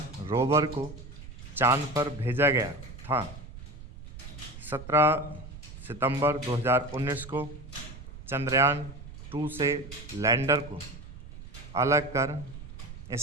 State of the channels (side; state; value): right; noise; rumble, 14 dB below the sound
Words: रोवर को चांद पर भेजा गया था। 17 सितंबर 2019 को चंद्रयान 2 से लैंडर को अलग कर